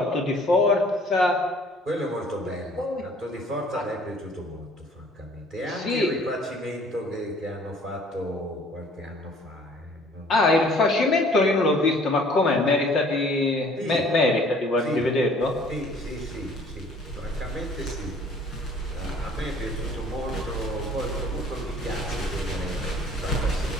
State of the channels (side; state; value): both; normal; correlation 0.55